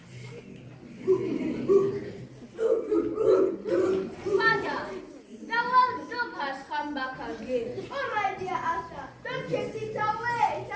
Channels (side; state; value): both; identical; correlation 1.00